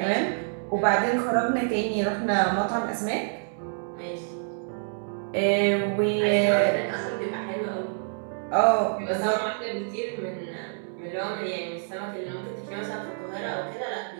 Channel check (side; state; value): left; silent; digital silence